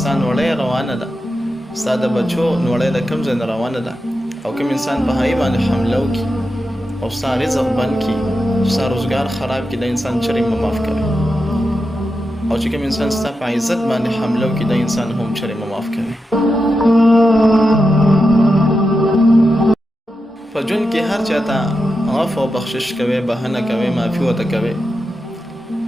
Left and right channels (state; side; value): normal; both; correlation 0.89